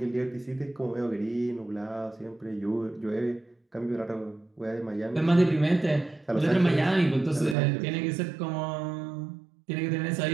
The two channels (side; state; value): left; drops out; at 7.6 s